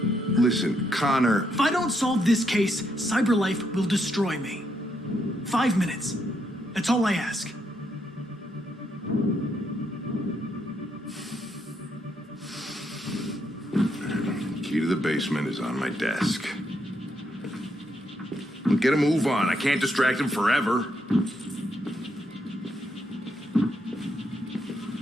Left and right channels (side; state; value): both; normal; correlation 0.77